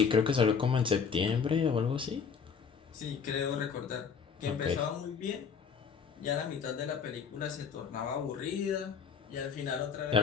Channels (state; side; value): quieter; right; 6.3 dB